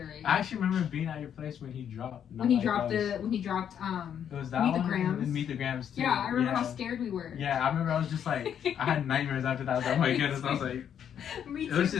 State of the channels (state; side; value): quieter; right; 8.9 dB